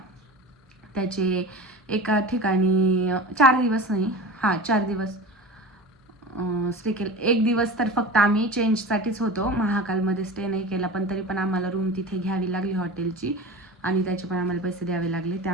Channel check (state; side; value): normal; both; correlation 0.33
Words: त्याचे एका ठिकाणी 4 दिवस नाही, 4 दिवस स्टे केलं. एक दिवस तर फक्त आम्ही चेंजसाठीच होतो, महाकालमध्ये स्टे नाही केला. पण तरी पण आम्हाला रूम तिथे घ्यावी लागली हॉटेलची, आणि त्याचे पण आम्हाला पैसे द्यावे लागले.